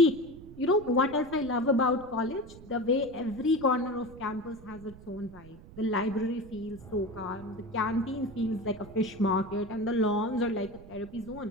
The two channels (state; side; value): noise; right; rumble, 18 dB below the sound